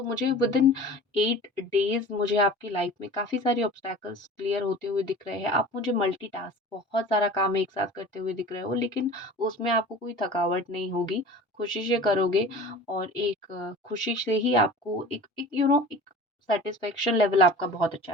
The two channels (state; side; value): normal; both; correlation 0.40